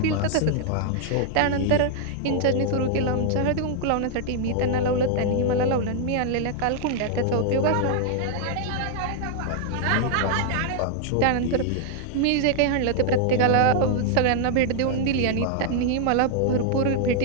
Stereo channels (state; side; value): different; both; correlation -0.01